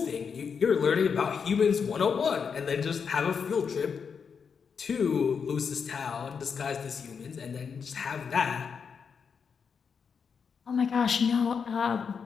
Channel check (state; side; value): quieter; right; 6.2 dB